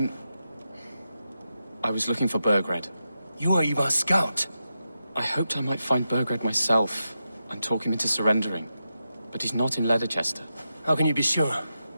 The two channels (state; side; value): inverted; both; correlation -0.89